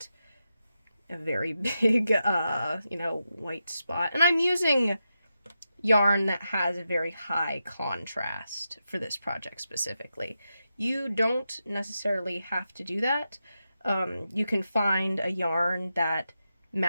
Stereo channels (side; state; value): both; inverted; correlation -0.88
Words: a very big, white spot. And I'm using yarn that has a very high contrast for this project specifically. You don't necessarily have to do that. You can find a yarn that